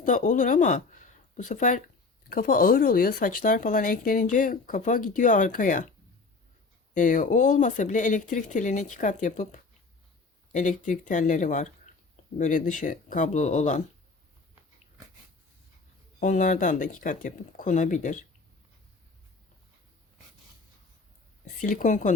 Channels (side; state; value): right; quieter; 4.1 dB